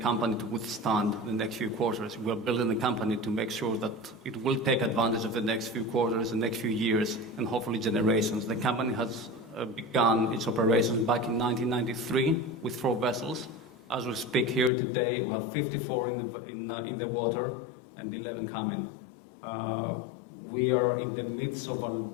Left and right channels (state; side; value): drops out; right; at 14.7 s